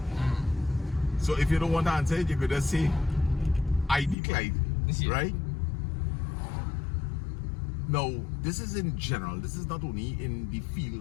So if you don't want to answer it, you could just say, I decline, Yeah. right? Now, this is in general. This is not only in the field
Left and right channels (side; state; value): right; drops out; at 4.2 s